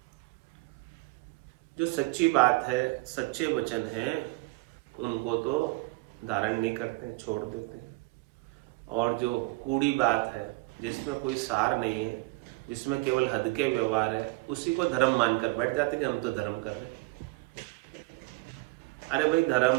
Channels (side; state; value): left; quieter; 24.6 dB